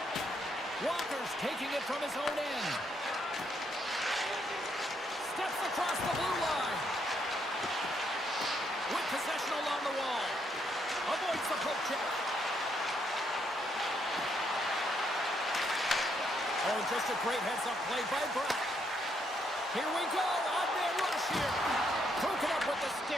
Walker's taking it from his own end. Steps across the blue line. With possession along the wall. Avoids the poke check. Oh, just a great heads-up play by Brock. Here we go. Odd man rush here. Broken up with the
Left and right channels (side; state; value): both; normal; correlation 0.74